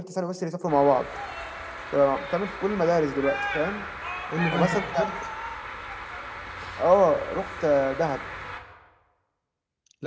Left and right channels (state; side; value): identical; both; correlation 1.00